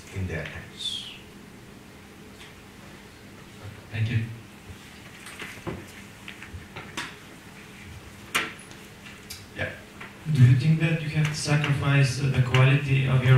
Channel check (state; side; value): identical; both; correlation 1.00